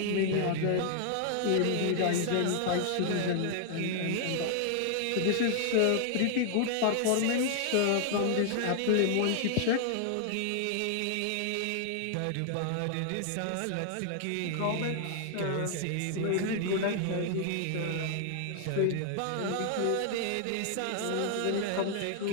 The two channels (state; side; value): different; both; correlation 0.00